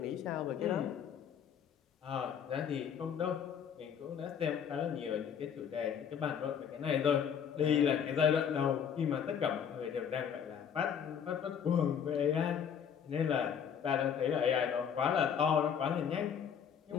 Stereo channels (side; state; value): right; quieter; 7.9 dB